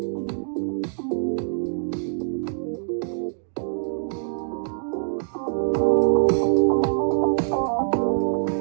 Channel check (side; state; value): left; silent; digital silence